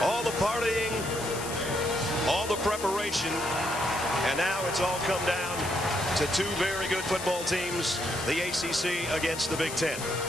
All the partying, all the preparation, and now it's all come down to two very good football teams, the ACC against the Big Ten.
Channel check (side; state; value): left; noise; hiss, 9 dB below the sound